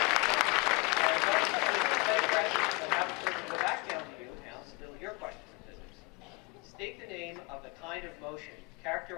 Go back down to you now, still your question in physics. State the name of the kind of motion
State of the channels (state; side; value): quieter; right; 27.3 dB